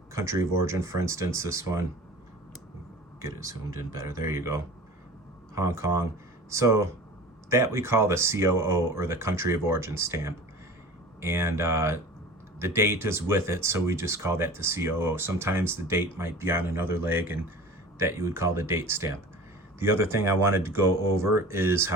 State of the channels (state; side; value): normal; both; correlation 0.39